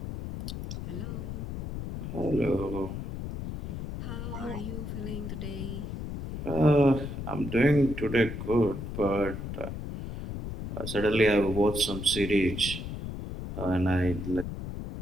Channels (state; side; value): noise; left; rumble, 6 dB below the sound